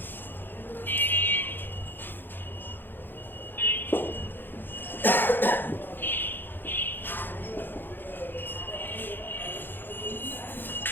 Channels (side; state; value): right; late; 0.096 ms